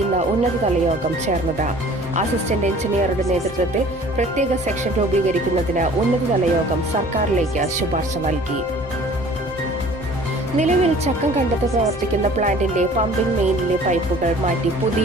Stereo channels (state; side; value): normal; both; correlation 0.49